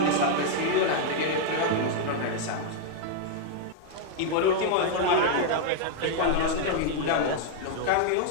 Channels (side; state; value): both; different; correlation 0.00